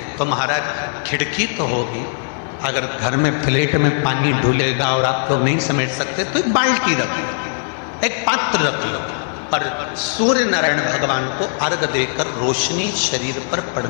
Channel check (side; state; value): right; silent; digital silence